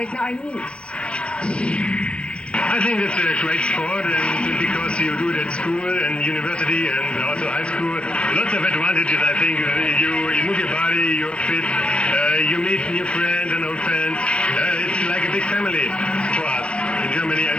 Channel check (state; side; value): late; right; 0.059 ms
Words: na Arnis. I think it's a great sport, and because you do it at school and university and also high school, lots of advantages. I think you move your body, you're fit, you meet new friends and old friends. It's like a big family for us in Germany, and